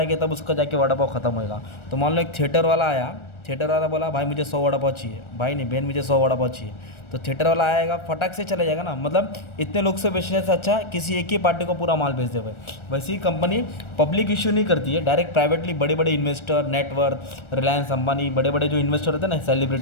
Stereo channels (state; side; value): late; right; 1.4 ms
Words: तब उसका जाके वड़ा पाव खत्म होएगा। तो मान लो एक थिएटर वाला आया, थिएटर वाला बोला भाई मुझे 100 वड़ा पाव चाहिए, भाई नहीं बहन मुझे 100 वड़ा पाव चाहिए। तो थिएटर वाला आएगा, फटाक से चला जाएगा ना। मतलब इतने लोग से बेचने से अच्छा किसी एक ही पार्टी को पूरा माल बेच दे भाई। वैसे ही कंपनी पब्लिक इशू नहीं करती है, डायरेक्ट प्राइवेटली बड़े बड़े इन्वेस्टर, नेटवर्थ, रिलायंस अंबानी, बड़े बड़े जो इन्वेस्टर रहते हैं ना,